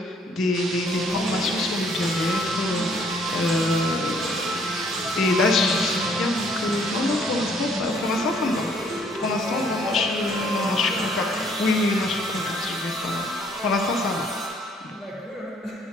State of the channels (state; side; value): normal; both; correlation 0.62